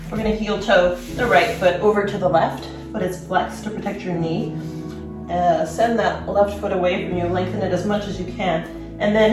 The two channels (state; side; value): identical; both; correlation 1.00